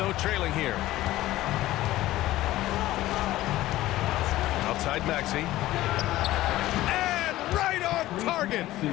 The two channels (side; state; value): right; quieter; 15.9 dB